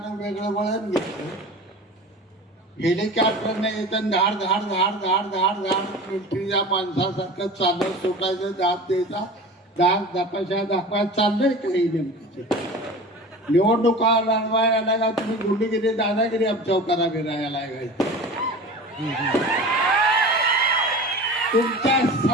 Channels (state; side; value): normal; both; correlation 0.35